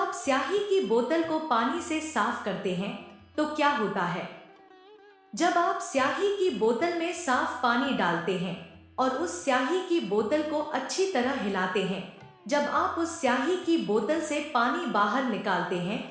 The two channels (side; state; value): both; identical; correlation 1.00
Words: स्याही की बोतल को पानी से साफ करते हैं तो क्या होता है? जब आप स्याही की बोतल में साफ पानी डालते हैं और उस स्याही की बोतल को अच्छी तरह हिलाते हैं, जब आप उस स्याही की बोतल से पानी बाहर निकालते हैं